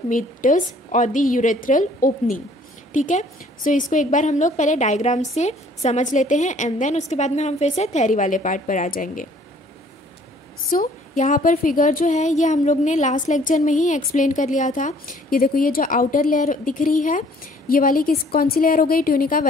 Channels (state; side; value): normal; both; correlation 0.57